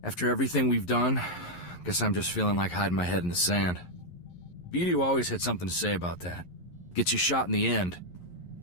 After everything we've done, guess I'm just feeling like hiding my head in the sand. Beatty always had something to say about that. Gets you shot in the end.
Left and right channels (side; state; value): right; late; 11 ms